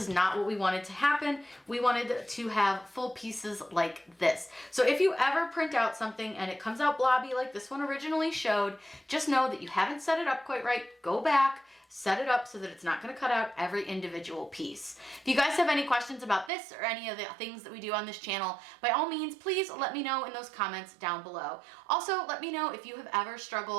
not what we wanted to happen. We wanted to have full pieces like this. So if you ever print out something and it comes out blobby like this one originally showed, just know that you haven't set it up quite right. Go back, set it up so that it's not going to cut out every individual piece. If you guys have any questions about this or any of the things that we do on this channel, by all means, please let me know in those comments down below. Also, let me know if you have ever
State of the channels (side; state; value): left; drops out; at 16.5 s